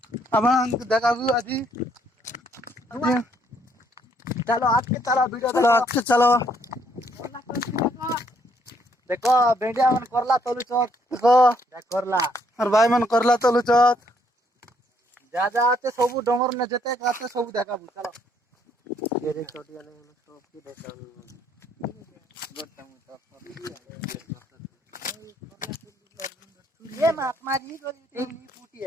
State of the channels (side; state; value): both; normal; correlation 0.69